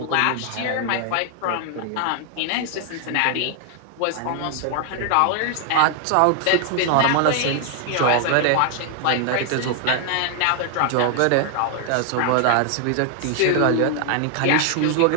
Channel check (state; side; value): different; both; correlation 0.00